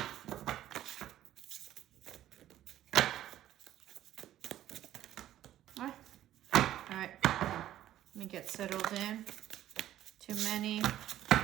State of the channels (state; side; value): quieter; left; 12.7 dB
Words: All right, let me get settled in. Too many.